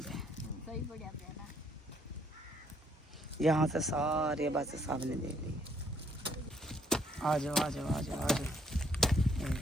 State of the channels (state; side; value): normal; both; correlation 0.67